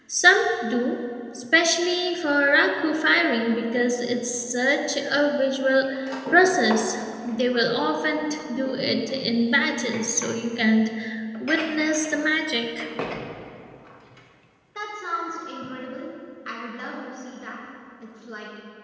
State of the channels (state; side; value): identical; both; correlation 1.00